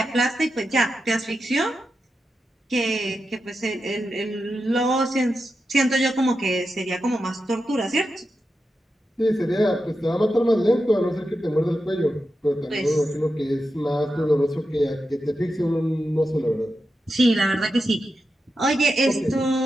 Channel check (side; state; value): both; normal; correlation 0.89